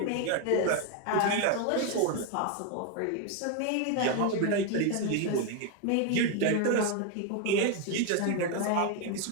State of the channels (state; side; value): different; both; correlation 0.01